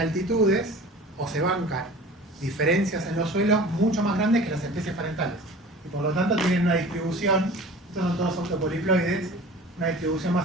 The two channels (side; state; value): both; normal; correlation 0.41